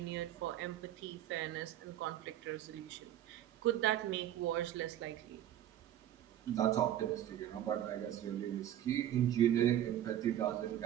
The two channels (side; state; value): left; quieter; 11.8 dB